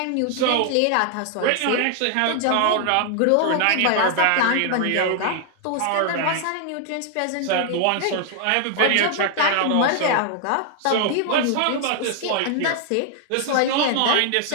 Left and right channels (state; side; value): different; both; correlation 0.00